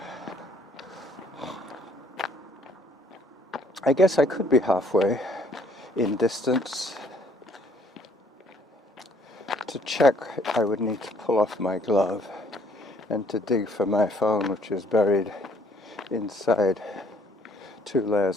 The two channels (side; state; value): both; normal; correlation 0.62